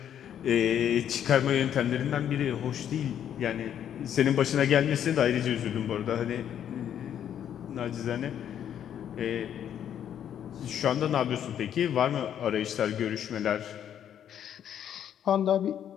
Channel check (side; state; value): right; quieter; 9.7 dB